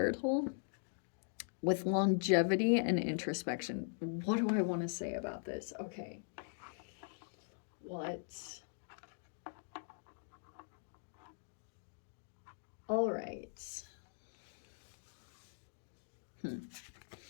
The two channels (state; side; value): silent; right; digital silence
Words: with longevity and introspection. What do I want to say about this? Okay. What? All right.